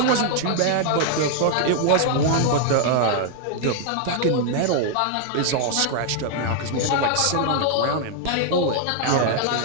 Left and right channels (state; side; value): different; both; correlation 0.00